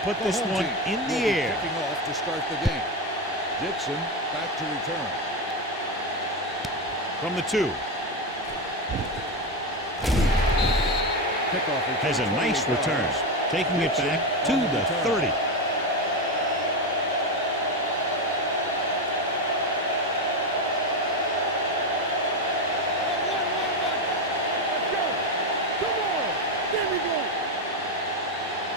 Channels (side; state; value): both; normal; correlation 0.13